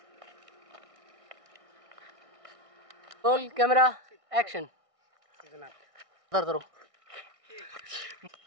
Roll camera action. इधर करो।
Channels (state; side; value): late; left; 1.6 ms